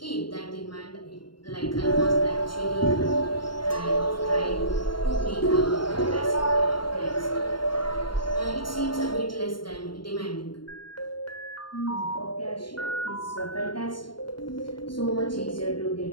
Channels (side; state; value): right; late; 0.72 ms